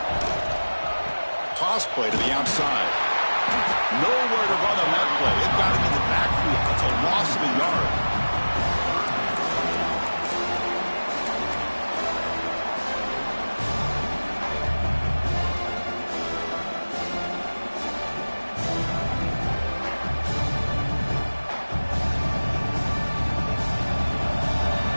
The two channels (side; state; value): both; inverted; correlation -1.00